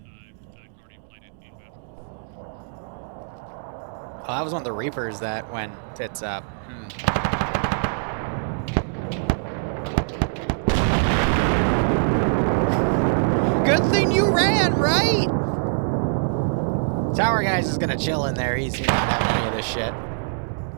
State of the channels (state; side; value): silent; left; digital silence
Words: Guardian flight inbound. Oh, that was one of the Reapers that went tits up. Tower guy's just gonna chill in there. He's not having any of this shit.